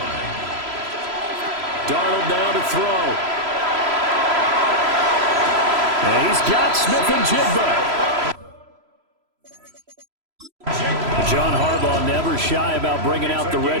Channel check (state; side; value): late; left; 3.0 ms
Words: Darnold now to throw. And he's got Smith and Jigba. John Harbaugh never shy about bringing out the